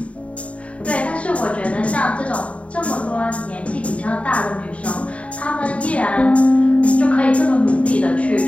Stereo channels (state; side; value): late; right; 0.064 ms